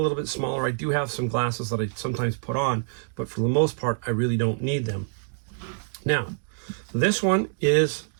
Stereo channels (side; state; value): left; silent; digital silence